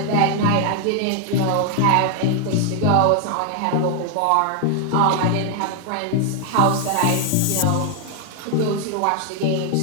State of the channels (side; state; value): both; different; correlation 0.00